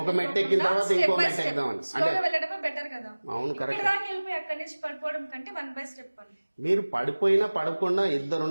ఒక మెట్టు ఎక్కిన తర్వాత ఇంకో మెట్టు ఎక్కుదామని స్లోగా వెళ్ళడమే బెటర్ కదా. అవును, కరెక్ట్. దాకా వెళ్ళిపోయి అక్కడి నుంచి పడిపోవడం కంటే 1 by step అని. మీరు పడిపోయినా పడకుండా ఇద్దరు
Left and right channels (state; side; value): inverted; both; correlation -1.00